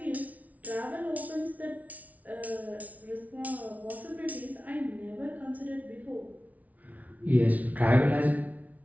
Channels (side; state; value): left; late; 0.072 ms